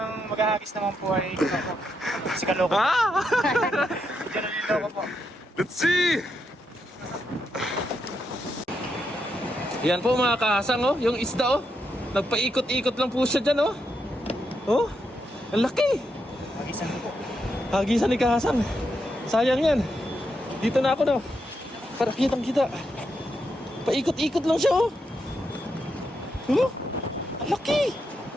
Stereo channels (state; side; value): normal; both; correlation 0.82